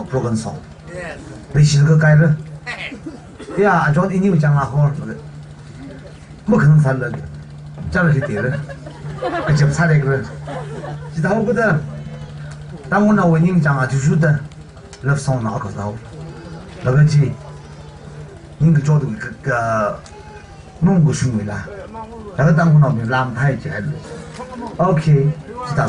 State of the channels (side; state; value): both; identical; correlation 1.00